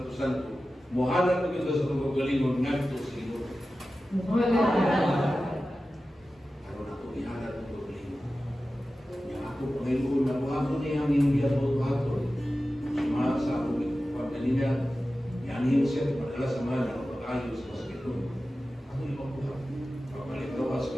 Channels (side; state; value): both; normal; correlation 0.94